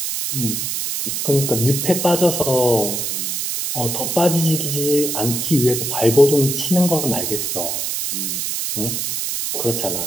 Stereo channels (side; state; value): right; noise; hiss, 2 dB below the sound